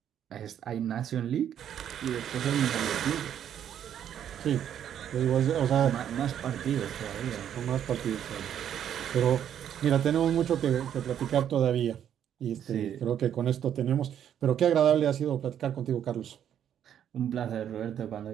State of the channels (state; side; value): quieter; left; 9.7 dB